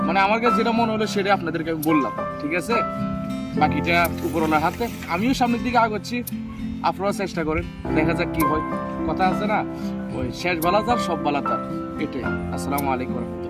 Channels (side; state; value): both; identical; correlation 1.00